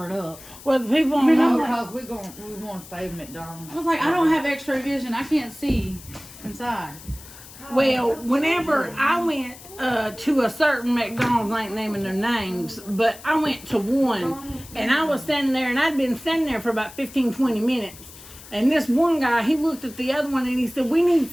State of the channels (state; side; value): noise; left; hiss, 18 dB below the sound